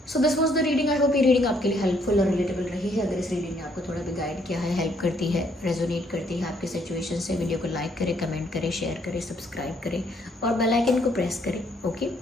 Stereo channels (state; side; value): normal; both; correlation 0.68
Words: So this was the reading. I hope ये रीडिंग आपके लिए हेल्पफुल और रिलेटेबल रही है। अगर इस रीडिंग ने आपको थोड़ा भी गाइड किया है, हेल्प करती है, रेजोनेट करती है आपकी सिचुएशन से, वीडियो को लाइक करें, कमेंट करें, शेयर करें, सब्सक्राइब करें और बेल आइकन को प्रेस करें, ओके।